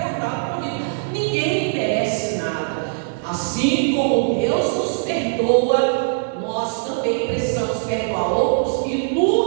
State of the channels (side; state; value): left; silent; digital silence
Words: com vida. Ninguém merece nada. Assim como Deus nos perdoa, nós também precisamos perdoar outros. E